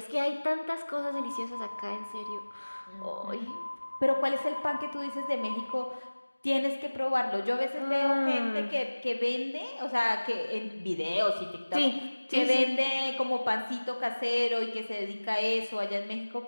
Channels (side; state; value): both; inverted; correlation -1.00